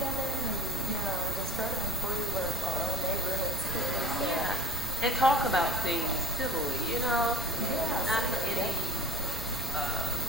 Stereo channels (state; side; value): noise; right; rumble, 9 dB below the sound